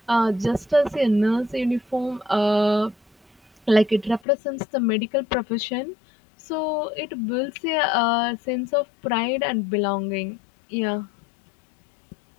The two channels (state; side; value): drops out; right; at 4.2 s